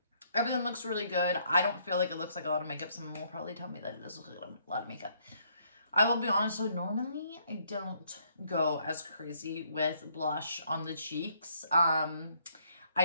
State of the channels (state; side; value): inverted; both; correlation -0.68